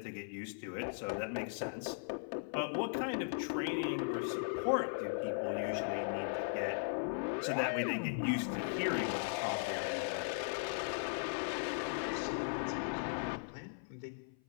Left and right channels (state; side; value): silent; right; 52 dB below the other